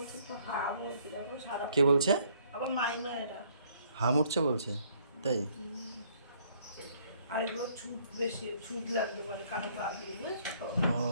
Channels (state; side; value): inverted; both; correlation -0.64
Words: তো হাম হচ্ছে দেখো সারা। কে বলছে? আবার মায়েরা হাম উঠছে বলছে তাই? আর এগুলো ছুট বেশি, ছুট লাগতে পারে কারো গা দিয়ে, বুঝেছো তো? ও